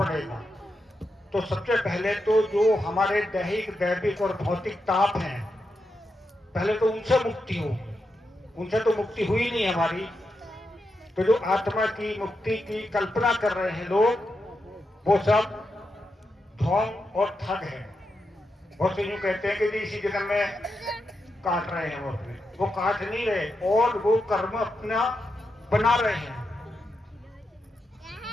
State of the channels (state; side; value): normal; both; correlation 0.86